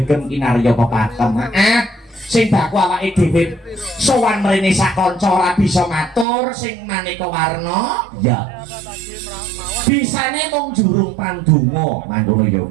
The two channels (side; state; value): left; drops out; at 6.2 s